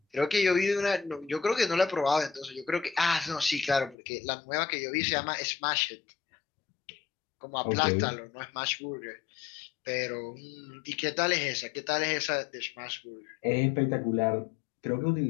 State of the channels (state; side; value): drops out; right; at 4.0 s